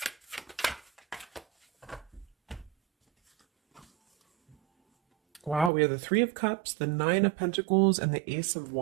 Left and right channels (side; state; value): left; drops out; at 5.7 s